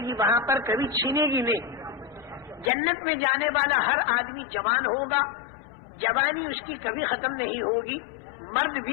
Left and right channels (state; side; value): drops out; right; at 2.7 s